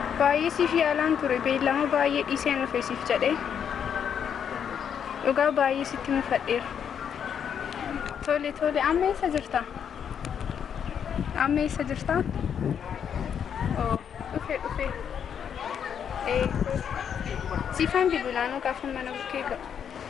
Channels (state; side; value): quieter; right; 8.1 dB